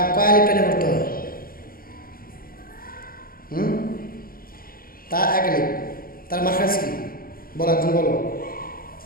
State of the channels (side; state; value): right; late; 0.42 ms